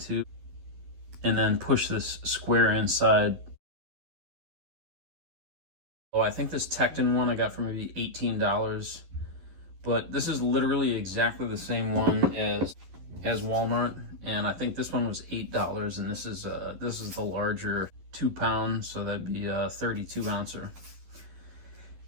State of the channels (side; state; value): left; late; 11 ms